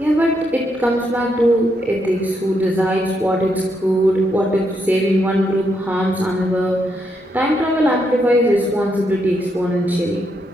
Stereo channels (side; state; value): both; normal; correlation 0.79